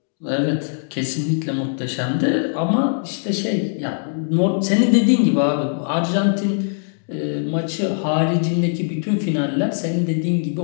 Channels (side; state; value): right; silent; digital silence